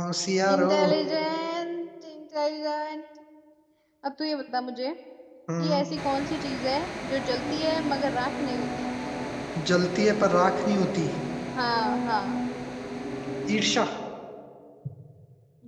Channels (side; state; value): both; identical; correlation 1.00